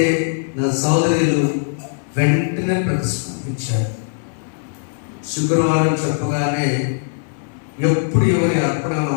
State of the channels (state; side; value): silent; right; 65 dB below the other